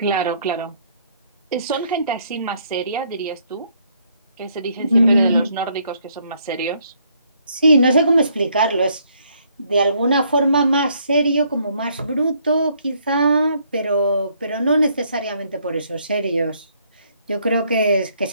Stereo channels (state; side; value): inverted; both; correlation -0.68